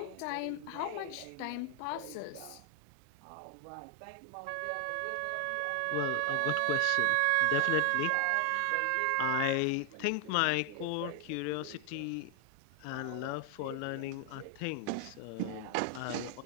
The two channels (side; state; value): both; different; correlation 0.00